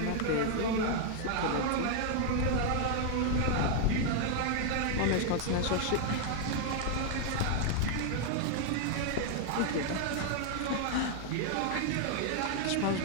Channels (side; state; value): both; different; correlation 0.00